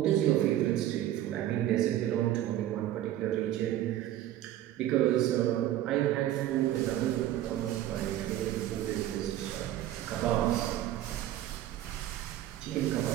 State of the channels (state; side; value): quieter; left; 13.0 dB